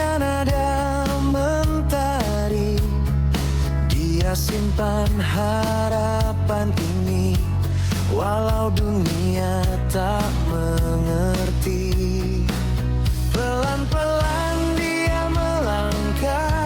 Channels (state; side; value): identical; both; correlation 1.00